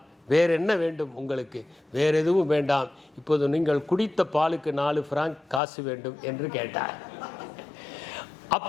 வேறு என்ன வேண்டும் உங்களுக்கு? வேறு எதுவும் வேண்டாம், இப்போது நீங்கள் குடித்த பாலுக்கு 4 பிராங்க் காசு வேண்டும் என்று கேட்டார்.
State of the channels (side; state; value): right; drops out; at 5.6 s